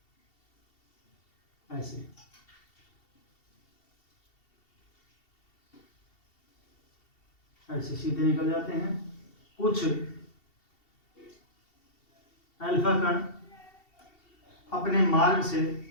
ऐसे सीधे निकल जाते हैं। कुछ अल्फा कण अपने मार्ग से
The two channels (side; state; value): right; late; 2.7 ms